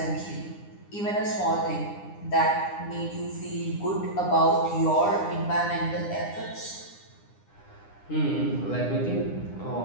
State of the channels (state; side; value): late; right; 9.9 ms